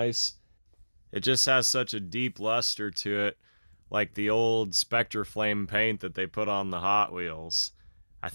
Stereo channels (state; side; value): inverted; both; correlation -1.00